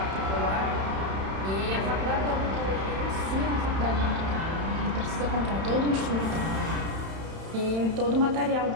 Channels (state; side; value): late; left; 31 ms